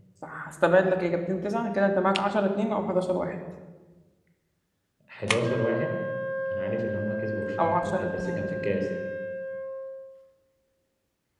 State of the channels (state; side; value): identical; both; correlation 1.00